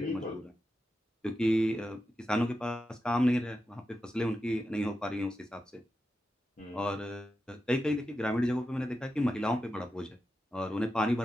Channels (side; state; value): both; normal; correlation 0.89